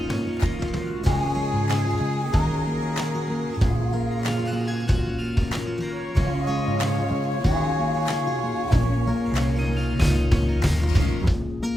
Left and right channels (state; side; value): normal; both; correlation 0.88